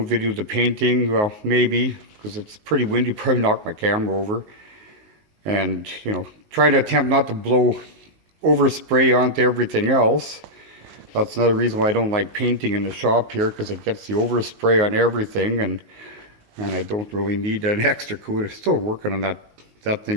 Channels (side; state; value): left; late; 19 ms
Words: video the painting. Well, maybe, because it's pretty windy, probably knock my camera over. And, you know, try to attempt not to blow overspray onto everything else. That's another reason why I don't like painting in the shop here, because it gets the overspray on everything, and I don't really need an extra coat. I'm still working on that